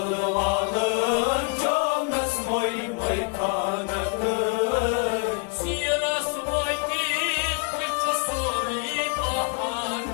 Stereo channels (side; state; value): right; quieter; 35.9 dB